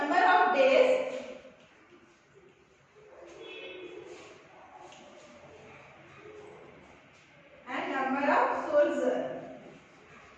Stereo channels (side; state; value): both; identical; correlation 1.00